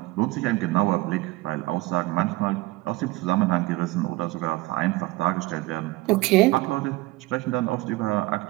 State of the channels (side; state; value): left; quieter; 19.4 dB